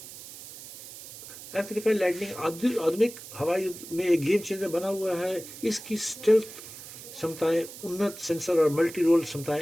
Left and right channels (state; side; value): noise; right; hiss, 14 dB below the sound